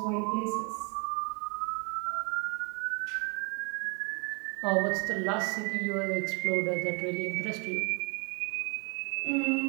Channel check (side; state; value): left; quieter; 33.5 dB